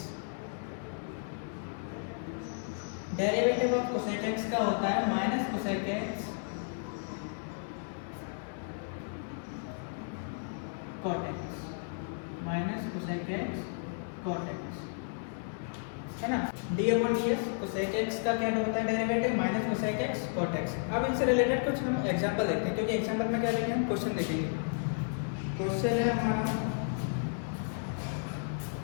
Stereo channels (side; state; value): right; silent; digital silence